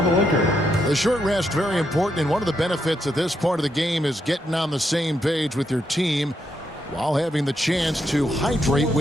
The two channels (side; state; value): both; normal; correlation 0.80